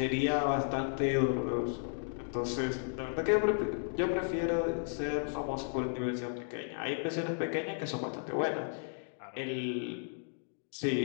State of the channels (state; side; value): silent; right; digital silence